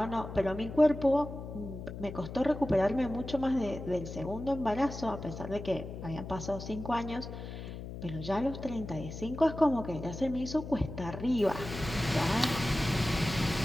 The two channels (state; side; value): noise; left; hum, 9 dB below the sound